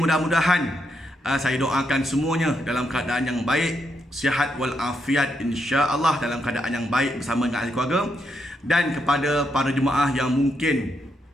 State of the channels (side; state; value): both; normal; correlation 0.80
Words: saya doakan semuanya dalam keadaan yang baik, sihat walafiat, insya-Allah dalam keadaan yang baik bersama dengan ahli keluarga. Dan kepada para jemaah yang mungkin